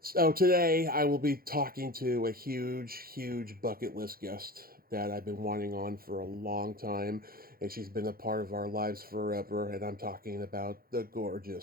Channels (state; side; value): late; left; 0.43 ms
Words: today I will be talking to a huge bucket list guest that I've been wanting on for a long time, and she's been a part of our lives forever, and I'm talking about the